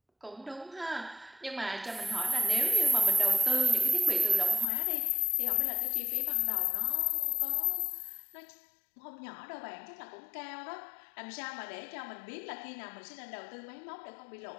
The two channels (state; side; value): drops out; right; at 4.7 s